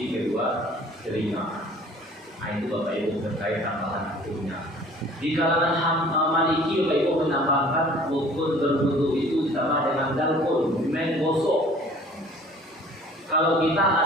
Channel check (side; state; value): both; normal; correlation 0.50